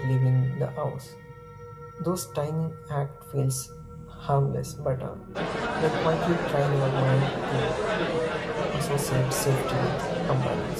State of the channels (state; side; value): identical; both; correlation 1.00